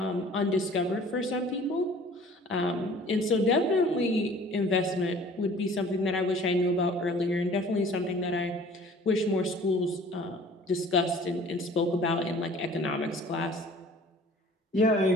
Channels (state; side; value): normal; both; correlation 0.49